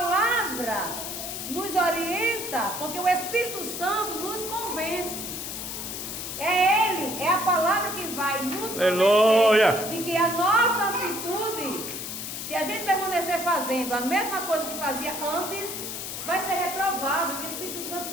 nos orienta, porque o Espírito Santo nos convence. É Ele, é a palavra que vai nos convencer de que a nossa atitude, se a gente permanecer fazendo a mesma coisa que fazia antes, vai ser reprovável. O Espírito Santo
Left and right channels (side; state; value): left; noise; hiss, 6 dB below the sound